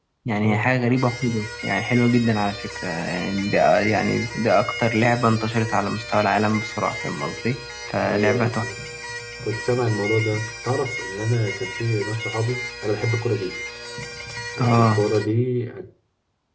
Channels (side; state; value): both; identical; correlation 1.00